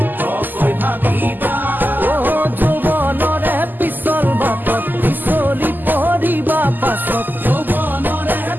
ও যৌৱনৰে পিছল বাটত পিছলি পৰিবা পাছত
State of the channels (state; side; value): late; left; 0.088 ms